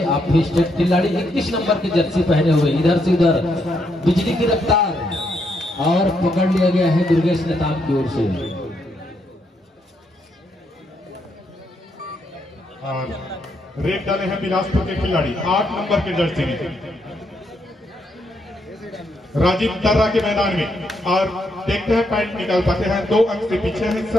आप भी स्टेट खिलाड़ी 21 नंबर की जर्सी पहने हुए, इधर से उधर बिजली की रफ्तार, और पकड़ लिया गया है दुर्गेश नेताम की ओर से। और रेड डाले हैं बिलासपुर के खिलाड़ी 8 नंबर के जर्सी में, राजीव तर्रा के मैदान में, और देखते हैं पॉइंट निकाल पाते हैं। 2 अंक से पीछे है इस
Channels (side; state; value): both; normal; correlation 0.77